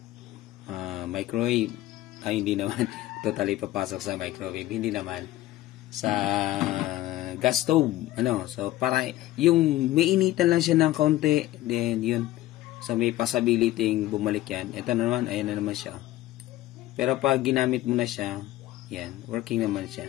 microwave. Ay, hindi naman. Totally papasok sa microwave. Hindi naman. Sa gas stove. Ano? So, para yung mainitan lang siya ng konti. Then, yun. So, may possibility bumalik yan. Ito naman, ayan na naman siya. Pero pag ginamit mo na siya, yan, working naman siya.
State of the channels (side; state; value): right; quieter; 15.6 dB